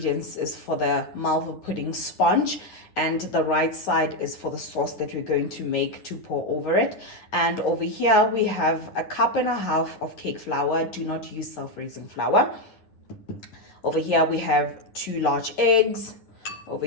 is for the Malva pudding sponge, and the right side is for the sauce that we're going to make to pour over it. And over here, we have 1.5 cups of cake flour. Do not use self-raising flour. Over here, we have 2 large eggs. Over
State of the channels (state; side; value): late; right; 10 ms